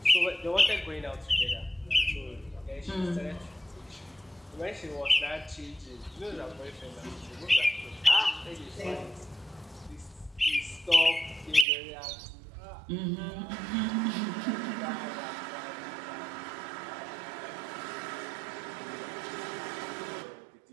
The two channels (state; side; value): drops out; left; at 11.7 s